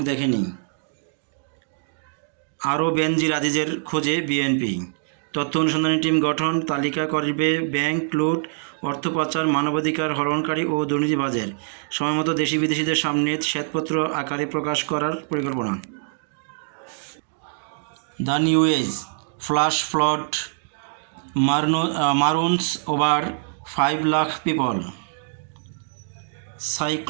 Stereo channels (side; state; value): left; silent; digital silence